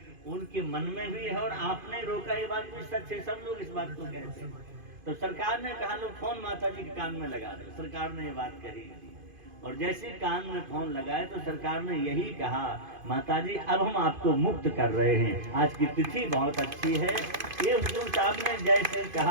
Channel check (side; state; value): left; late; 2.5 ms